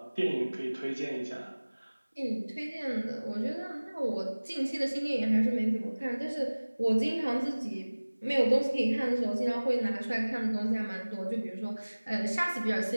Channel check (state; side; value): inverted; both; correlation -1.00